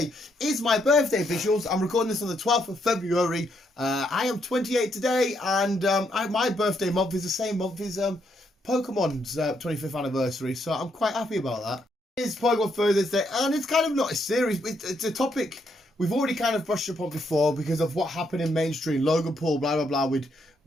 is my birthday visuals. I'm recording this on the 12th of February. I am 28 today, and my birthday month is the same month as Pokemon's 25th anniversary, so I'm quite happy about that. It's Pokemon Thursday, and it's kind of not a series. It's a topic we've already kind of brushed upon before because of what happened in mainstream, Logan Paul, blah, blah, blah, with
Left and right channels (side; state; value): both; normal; correlation 0.76